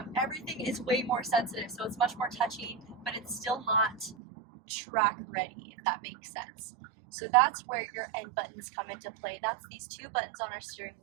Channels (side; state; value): left; drops out; at 4.2 s